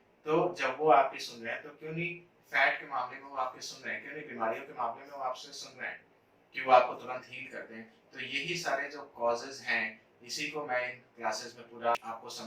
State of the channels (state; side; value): identical; both; correlation 1.00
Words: तो जब वो आपकी सुन रहे हैं तो क्यों नहीं फैट के मामले में वो आपके सुन रहे हैं, क्यों नहीं बीमारियों के मामले में वो आपसे सुन रहे हैं कि वो आपको तुरंत हील कर दें? तो यही सारे जो कॉजेज हैं इसी को मैं इन क्लासेस में पूरा आपको